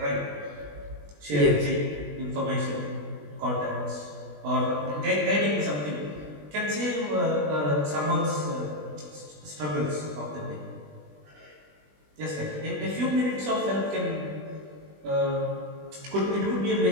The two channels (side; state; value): left; late; 20 ms